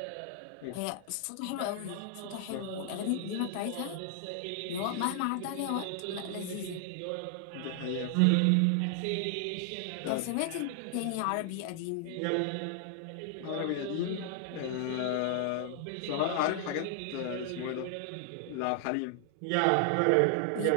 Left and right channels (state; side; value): different; both; correlation 0.00